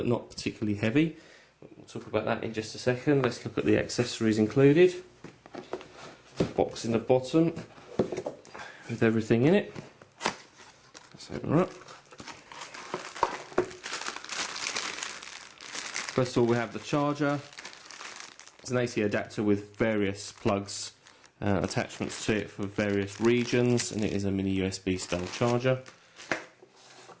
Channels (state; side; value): identical; both; correlation 1.00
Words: not particularly heavy. We'll talk about that in just a second. Let's look at the accessories included. Box in the bottom with everything in it. Let's open her up. First of all, we have the charger. It's an AC adapter with various plugs, attachments to it for various regions, and it is a mini USB style charger.